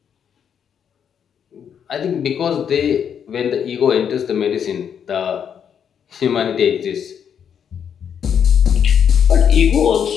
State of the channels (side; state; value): right; quieter; 8.1 dB